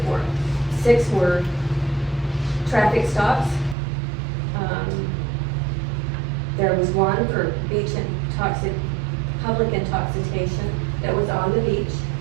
6 were traffic stops. There was 1 for public intoxication that was on the beach.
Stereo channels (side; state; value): left; drops out; at 3.8 s